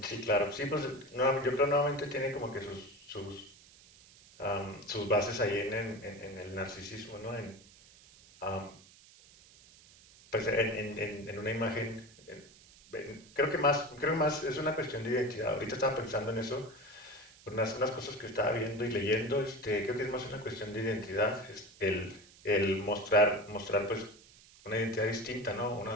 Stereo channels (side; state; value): right; noise; hiss, 24 dB below the sound